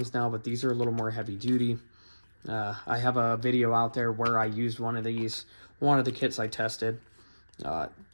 now, but these are a little more heavy duty. I have a video out there where I used one of these, one of the kits I tested.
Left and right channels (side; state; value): both; inverted; correlation -1.00